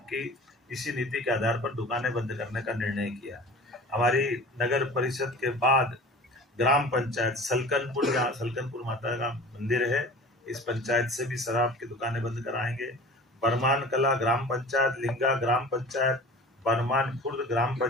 की इसी नीति के आधार पर दुकानें बंद करने का निर्णय किया। हमारी नगर परिषद के बाद ग्राम पंचायत सलकनपुर, जहाँ सलकनपुर माता का मंदिर है, इस पंचायत से भी शराब की दुकानें बंद कराएंगे। बरमान कला ग्राम पंचायत, लिंगा ग्राम पंचायत, बरमान खुर्द ग्राम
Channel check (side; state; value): both; normal; correlation 0.41